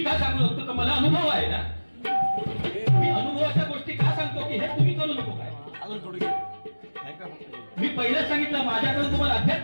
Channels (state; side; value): inverted; both; correlation -1.00